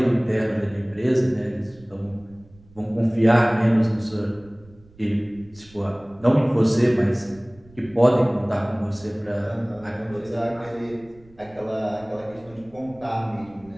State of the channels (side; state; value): right; noise; rumble, 26 dB below the sound